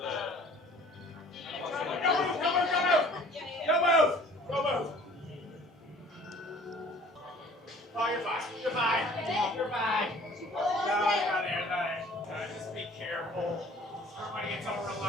Oh, you're fine. You're fine. You're fine. No, you're not there. Just be careful. Everybody gets all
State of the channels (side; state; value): both; normal; correlation 0.51